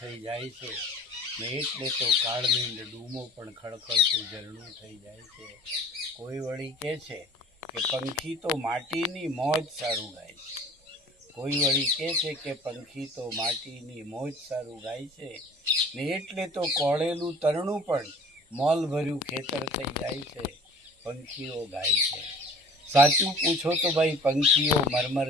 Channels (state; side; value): normal; both; correlation 0.46